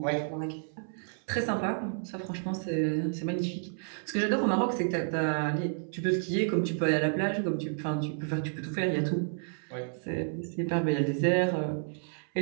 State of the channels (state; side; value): silent; left; 57 dB below the other